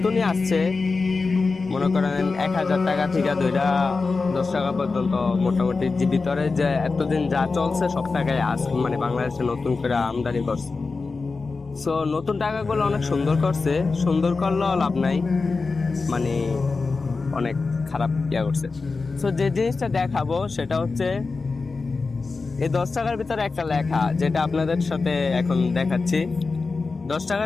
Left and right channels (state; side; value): quieter; right; 4.1 dB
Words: আসছে, মনে করেন 1,000 টাকা থেকে ধইরা 10 টাকা পর্যন্ত মোটামুটি যে ভিতরে যে এতদিন যা চলছে সব টাকায় বাংলাদেশে নতুন করে আমদানি করছে। সো নতুন টাকাগুলো অনেক সুন্দর করছে, সুন্দর করলেও লাভ নাই, অনেক খারাপ করছে। সো যে জিনিসটা দেখাবো সেটা হচ্ছে এই 10 টাকার ভিতরে একটা লেখা, যেটা আপনাদের সাথে এখন দেখাচ্ছি। 10